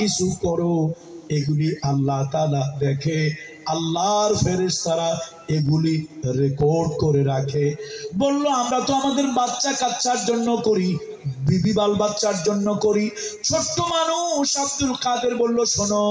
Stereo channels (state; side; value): identical; both; correlation 1.00